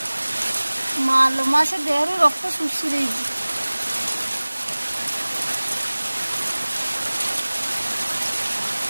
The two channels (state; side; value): inverted; both; correlation -1.00